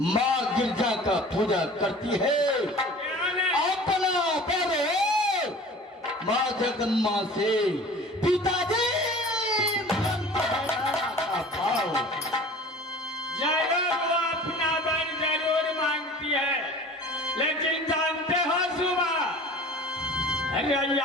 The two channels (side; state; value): both; normal; correlation 0.43